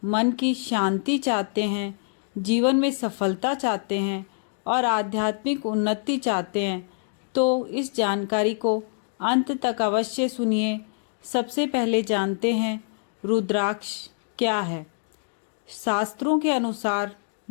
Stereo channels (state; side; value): silent; right; digital silence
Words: मन की शांति चाहते हैं, जीवन में सफलता चाहते हैं और आध्यात्मिक उन्नति चाहते हैं, तो इस जानकारी को अंत तक अवश्य सुनिए। सबसे पहले जानते हैं रुद्राक्ष क्या है। शास्त्रों के अनुसार